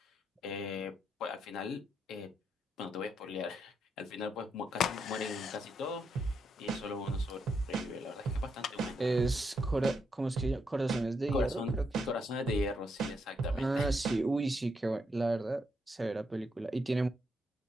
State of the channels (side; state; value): both; normal; correlation 0.79